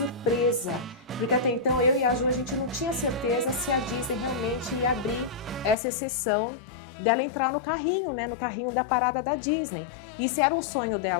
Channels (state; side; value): drops out; right; at 5.8 s